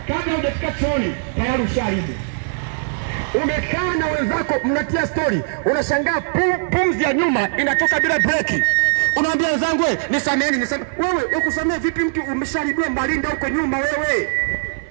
kabla hujafika chooni, tayari ushaharibu. Umekaa na wenzako mnatia story, unashangaa pumzi ya nyuma inatoka bila breki. Unaambia wenzangu, nisameni, nisameni. Wewe ukusamea vipi mtu umesharibiwa malinda huko nyuma wewe?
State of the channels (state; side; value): silent; left; 57 dB below the other